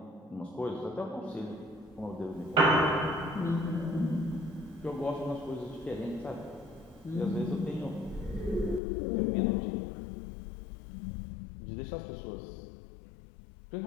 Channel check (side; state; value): right; drops out; at 8.8 s